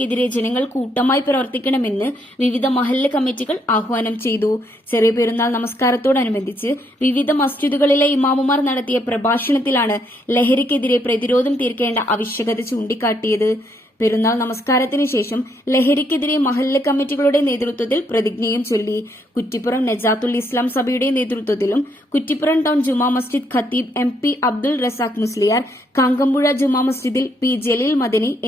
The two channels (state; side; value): normal; both; correlation 0.73